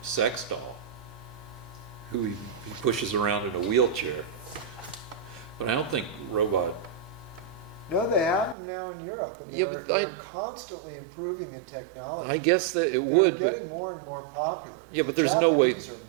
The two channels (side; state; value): left; drops out; at 8.6 s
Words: sex doll who he pushes around in a wheelchair. But I don't think robot. No, they have them now in Europe, and Yeah, they're, but they're constantly improving the technology. I guess that it They're would. getting more and more popular. Yeah, but the there's no way- Japanese